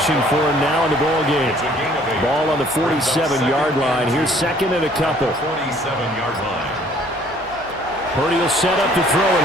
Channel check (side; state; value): left; noise; hum, 26 dB below the sound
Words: for him now in the ball game. Ball on the 47-yard line. Here's second and a couple. 47-yard line. Purdy will set up to throw it